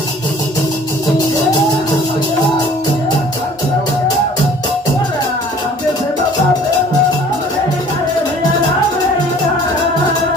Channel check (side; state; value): both; normal; correlation 0.51